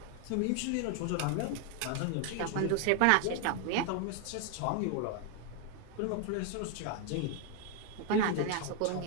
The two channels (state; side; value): different; both; correlation 0.00